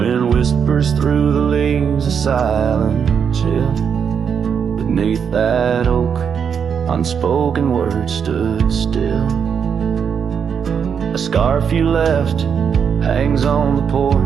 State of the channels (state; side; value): quieter; left; 7.1 dB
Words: whispers through the leaves, a silent chill. Beneath that oak, unspoken words stood still. A scarf you left hangs on the